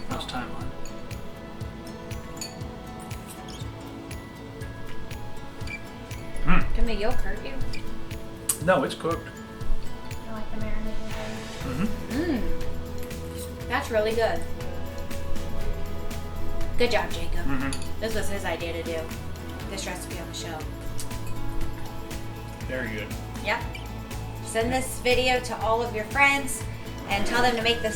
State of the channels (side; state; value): both; identical; correlation 1.00